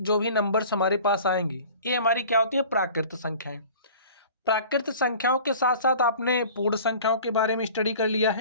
जो भी नंबर्स हमारे पास आएंगी ये हमारी क्या होती है? प्राकृत संख्याएं। प्राकृत संख्याओं के साथ साथ आपने पूर्ण संख्याओं के बारे में स्टडी कर लिया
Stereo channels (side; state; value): both; inverted; correlation -0.44